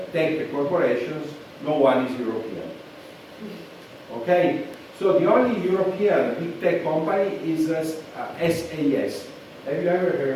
tech corporations, no one is European. Okay? So the only European big tech company is SAS. Have you ever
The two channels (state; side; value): identical; both; correlation 1.00